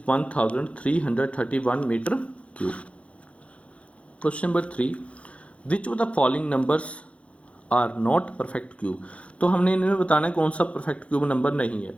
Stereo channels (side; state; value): right; late; 0.062 ms